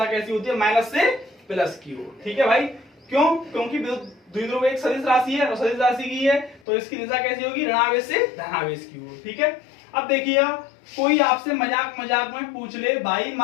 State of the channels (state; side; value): drops out; right; at 6.6 s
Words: कैसी होती है, माइनस से प्लस की ओर, ठीक है भाई। क्यों? क्योंकि द्विध्रुव एक सदिश राशि है और सदिश राशि की है तो इसकी दिशा कैसी होगी, ऋणावेश से धनावेश की ओर, ठीक है। अब देखिए, कोई आपसे मजाक मजाक में पूछ ले भाई